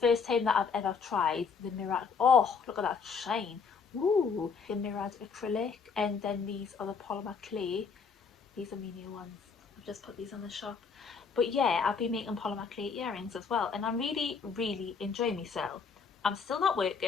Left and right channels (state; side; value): quieter; right; 5.6 dB